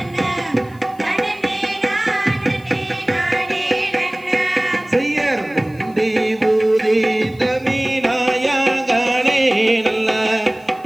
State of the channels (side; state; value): left; noise; hiss, 29 dB below the sound